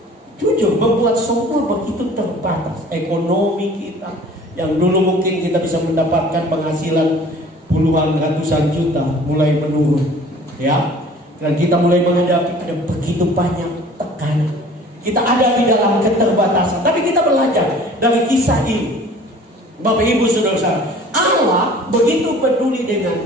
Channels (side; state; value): both; normal; correlation 0.48